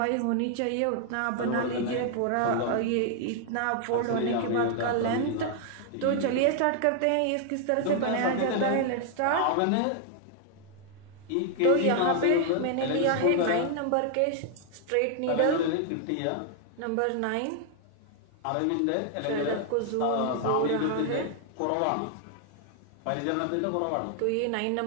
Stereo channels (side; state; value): both; different; correlation 0.00